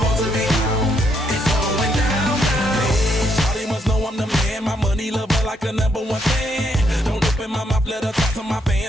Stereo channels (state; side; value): normal; both; correlation 0.75